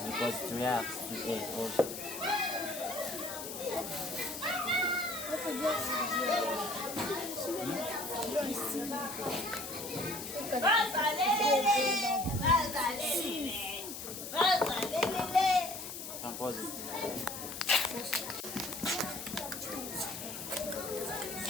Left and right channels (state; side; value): noise; left; hiss, 8 dB below the sound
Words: it reacts to 8 also. Can pause it.